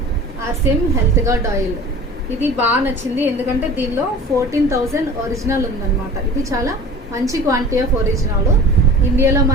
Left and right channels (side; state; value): both; normal; correlation 0.41